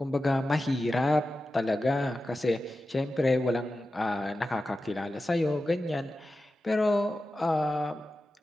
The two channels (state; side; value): normal; both; correlation 0.93